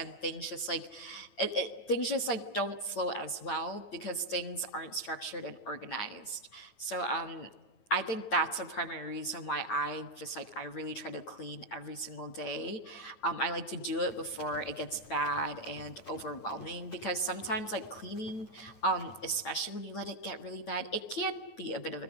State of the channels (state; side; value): late; right; 9.3 ms